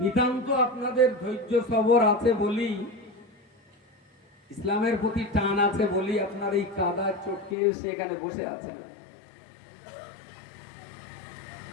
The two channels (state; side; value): drops out; right; at 7.6 s